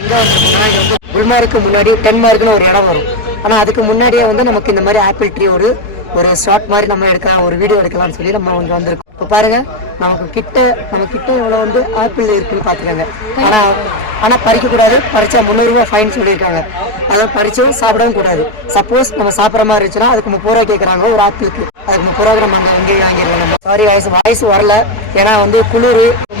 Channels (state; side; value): late; right; 4.7 ms